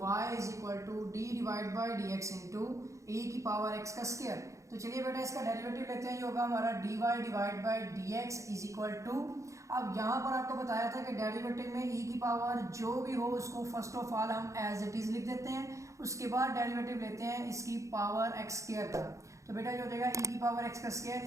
is equal to d divide by D x into e की पावर x का square. तो चलिए बेटा इसका डेरिवेटिव लेते हैं। ये होगा हमारा dy divide by D x is equal to, अब यहाँ पर आपको बताया था कि डेरिवेटिव में e की पावर जो भी हो उसको फर्स्ट ऑफ ऑल हम एज इट इज लिख देते हैं, उसके बाद डेरिवेटिव लेते हैं इसकी पावर x स्क्वायर का। तो बेटा जो हो जाएगा e की पावर x का स्क्वायर,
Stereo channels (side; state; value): left; late; 0.15 ms